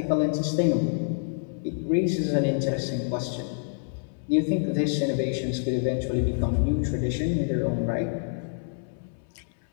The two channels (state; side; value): silent; right; 60 dB below the other